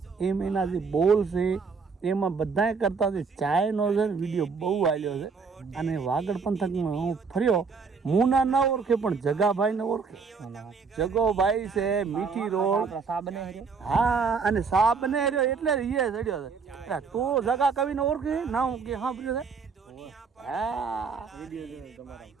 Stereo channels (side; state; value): left; quieter; 5.2 dB